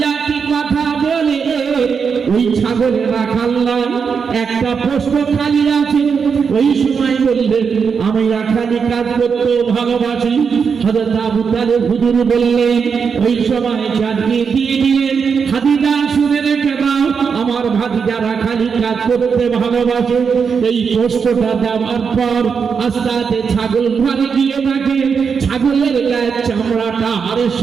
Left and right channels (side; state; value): left; quieter; 6.1 dB